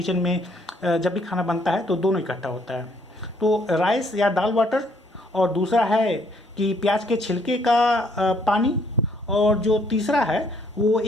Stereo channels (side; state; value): both; normal; correlation 0.67